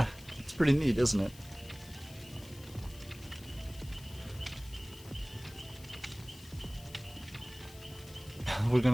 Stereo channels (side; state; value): left; noise; hiss, 19 dB below the sound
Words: it's pretty neat, isn't it? We're